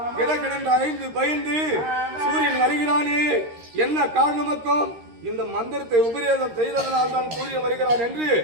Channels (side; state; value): left; late; 13 ms